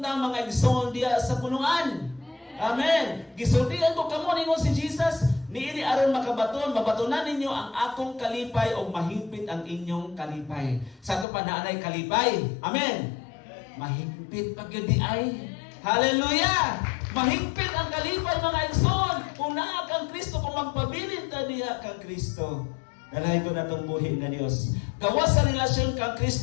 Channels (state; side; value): drops out; right; at 11.2 s